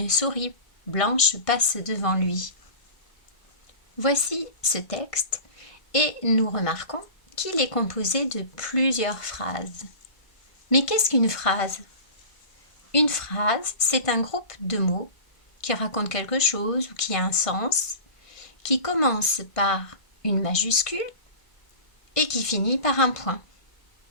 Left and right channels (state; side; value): late; right; 1.5 ms